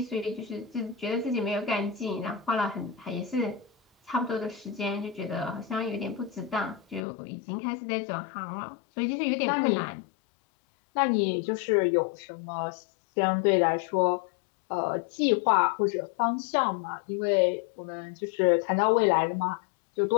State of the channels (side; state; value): right; drops out; at 7.0 s